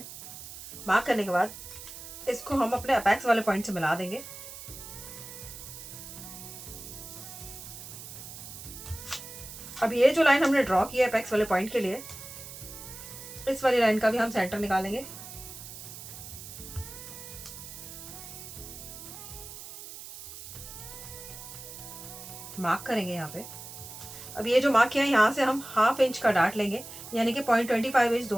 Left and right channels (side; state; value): right; noise; hiss, 12 dB below the sound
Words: मार्क करने के बाद इसको हम अपने अपेक्स वाले पॉइंट से मिला देंगे। अब ये जो लाइन हमने ड्रॉ की है अपेक्स वाले पॉइंट के लिए, इस वाली लाइन का भी हम सेंटर निकालेंगे। मार्क करेंगे यहाँ पे। अब ये जो मार्क किया है यहाँ से हम 1/2 इंच का डार्ट लेंगे, यानी कि 0.25 इंच